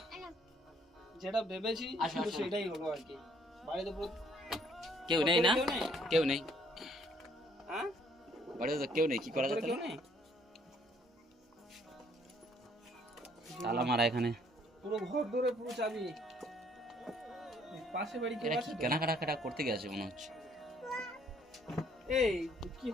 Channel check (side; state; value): both; normal; correlation 0.63